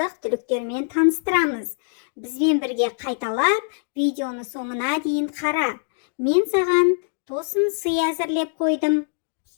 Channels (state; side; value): silent; right; digital silence